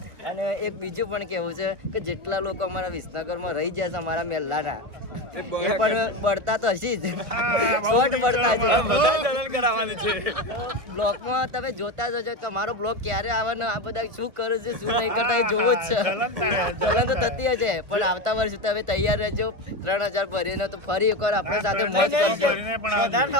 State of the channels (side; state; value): left; late; 1.3 ms